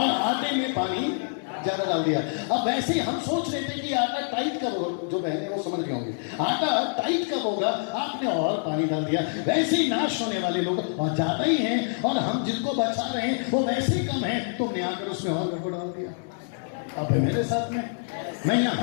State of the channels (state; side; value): silent; right; digital silence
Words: आटे में पानी ज्यादा डाल दिया। अब वैसे ही हम सोच रहे थे कि आटा टाइट कब होगा, जो बहने वो समझ गए होंगे, आटा टाइट कब होगा, आपने और पानी डाल दिया। वैसे ही नाश होने वाले लोग और ज्यादा ही हैं, और हम जिनको बचा रहे हैं वो वैसे ही कम है, तुमने आकर उसमें और गड़बड़ डाल दिया। अब है मेरे साथ में। मैं